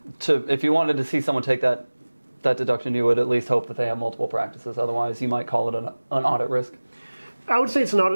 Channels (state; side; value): inverted; both; correlation -1.00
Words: if you wanted to see someone take that deduction, you would at least hope that they have multiple practices. Otherwise, you might call it an audit risk. I would say it's an